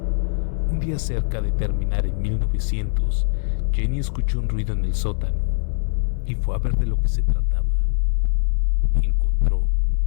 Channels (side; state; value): right; silent; 60 dB below the other